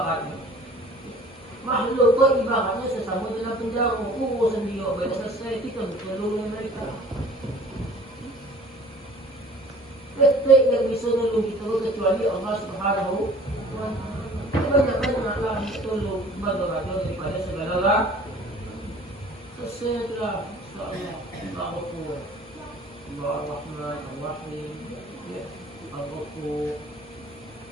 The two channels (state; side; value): normal; both; correlation 0.49